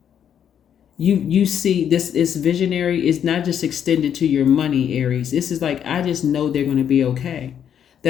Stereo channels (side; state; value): right; quieter; 8.9 dB